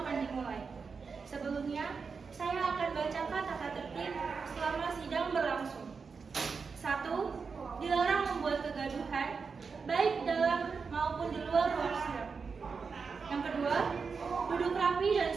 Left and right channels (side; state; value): left; quieter; 5.2 dB